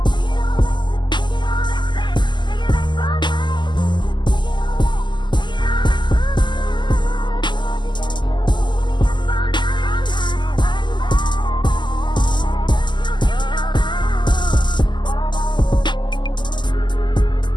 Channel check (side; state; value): right; late; 0.22 ms